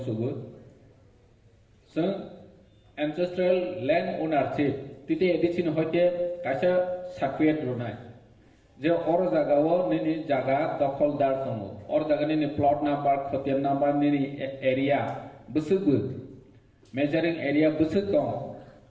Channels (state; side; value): identical; both; correlation 1.00